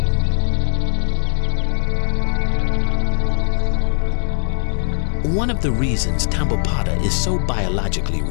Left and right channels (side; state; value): right; silent; 63 dB below the other